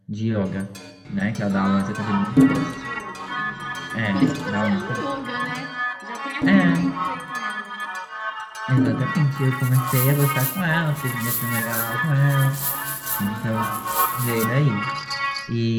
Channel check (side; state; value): both; identical; correlation 1.00